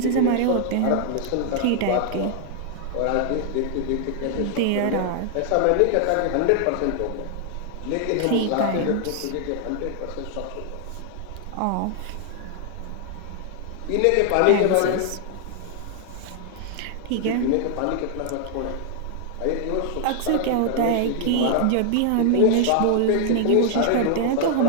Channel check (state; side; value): different; both; correlation 0.00